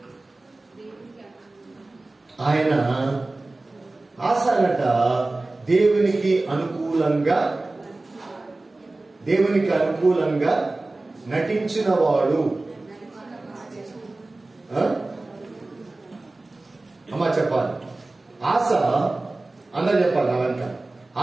ఆయన ఆశనట దేవునికి అనుకూలంగా నటించిన వాడు. అమ్మా చెప్పాలి. ఆశ అందరూ చెప్పాలి. అవంత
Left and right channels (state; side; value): quieter; left; 3.0 dB